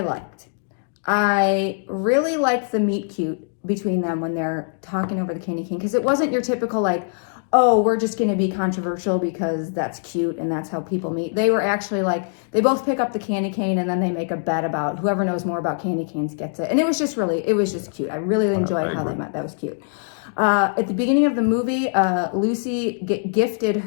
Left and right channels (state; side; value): silent; right; digital silence